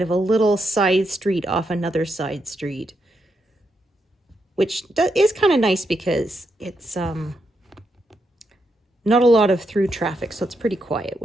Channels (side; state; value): both; normal; correlation 0.82